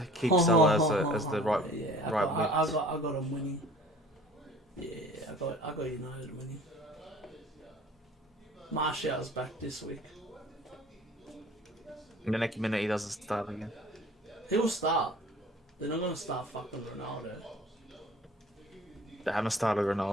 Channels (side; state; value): both; normal; correlation 0.48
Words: keep Salah as the right yeah, right mid. I got him winning. Yeah, I got United winning. Martial's back this week. In the next minute, he doesn't start again. He'll start. They're not gonna start fucking Ronaldo. They haven't started